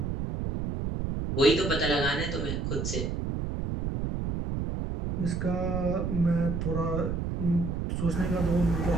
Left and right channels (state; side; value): noise; right; rumble, 2 dB below the sound